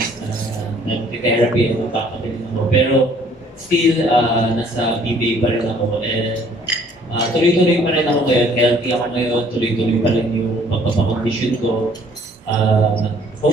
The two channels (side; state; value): both; normal; correlation 0.59